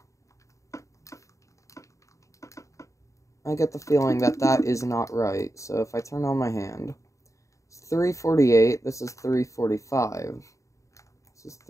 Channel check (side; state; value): right; late; 0.15 ms